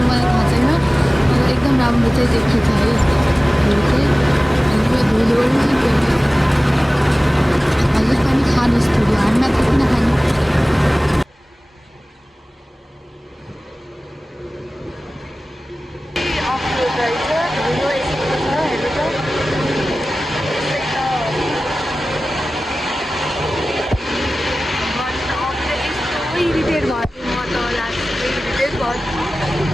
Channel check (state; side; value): normal; both; correlation 0.97